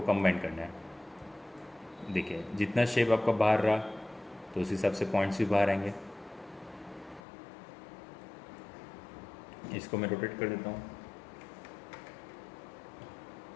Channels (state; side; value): drops out; right; at 7.2 s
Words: कंबाइन करना है। देखिए जितना शेप आपका बाहर रहा तो उस हिसाब से पॉइंट्स भी बाहर आएंगे। इसको मैं रोटेट कर देता हूँ।